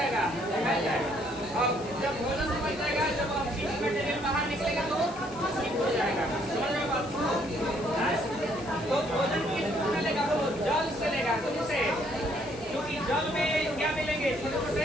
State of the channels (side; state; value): left; noise; hiss, 18 dB below the sound